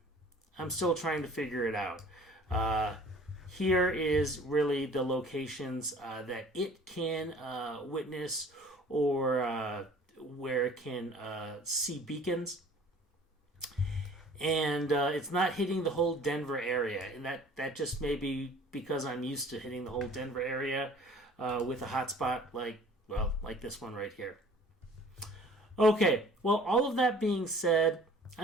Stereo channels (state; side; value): normal; both; correlation 0.50